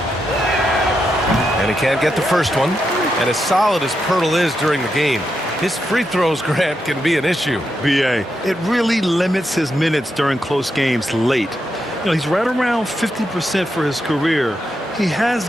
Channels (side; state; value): both; normal; correlation 0.84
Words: And he can't get the first one. And as solid as Pirtle is during the game, his free throws, Grant, can be an issue. B.A., it really limits his minutes during close games late. You know, he's right around 50% for his career. He